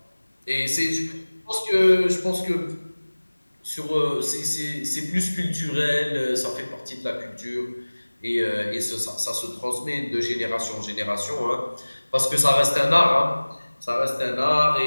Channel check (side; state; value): both; inverted; correlation -1.00